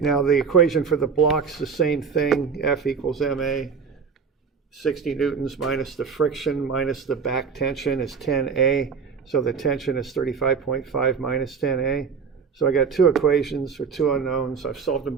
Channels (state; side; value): quieter; left; 5.9 dB